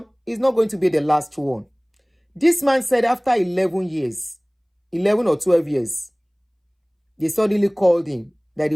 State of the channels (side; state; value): both; identical; correlation 1.00